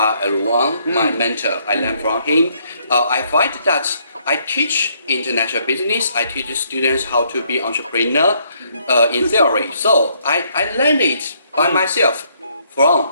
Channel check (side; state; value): both; inverted; correlation -0.69